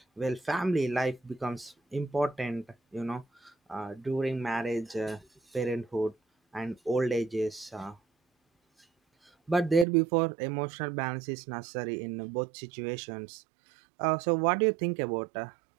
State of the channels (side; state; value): left; drops out; at 9.9 s